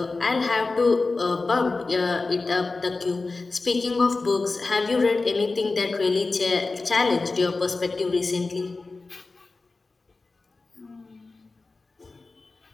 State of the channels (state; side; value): quieter; right; 3.7 dB